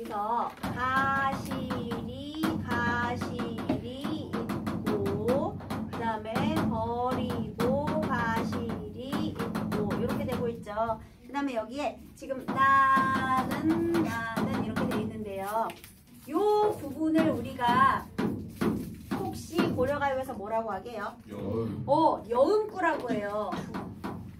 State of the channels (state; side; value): identical; both; correlation 1.00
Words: 가시리 있고, 그 다음에 버리고 가시리 있고 이렇게 되고 있죠. 되죠. 그 다음에 여기에 지금 나는 이렇게 돼 있는데요. 요 부분을 우리가 혹시 고려가요에서 뭐라고 하게요? 여음구라고 해요.